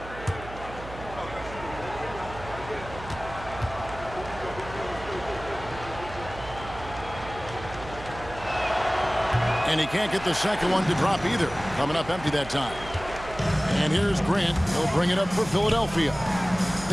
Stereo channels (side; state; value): right; noise; hum, 14 dB below the sound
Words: And he can't get the second one to drop either. Coming up empty that time. And here's Grant. He'll bring it up for Philadelphia.